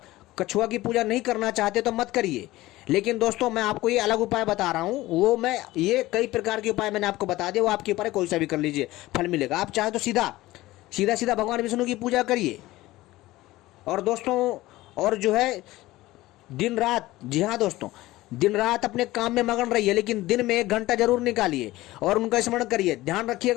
कछुआ की पूजा नहीं करना चाहते तो मत करिए। लेकिन दोस्तों मैं आपको ये अलग उपाय बता रहा हूँ, वो मैं ये कई प्रकार के उपाय मैंने आपको बता दिए, वो आपके ऊपर है, कोई सा भी कर लीजिए, फल मिलेगा। आप चाहे तो सीधा भगवान विष्णु की पूजा करिए। और दोस्तों और जो है दिन रात, जी हाँ दोस्तों, दिन रात अपने काम में मगन रहिए, लेकिन दिन में 1 घंटा जरूर निकालिए और उनका स्मरण करिए। ध्यान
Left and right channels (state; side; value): quieter; right; 17.7 dB